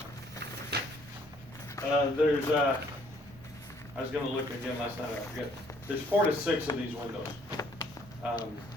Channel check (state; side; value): normal; both; correlation 0.63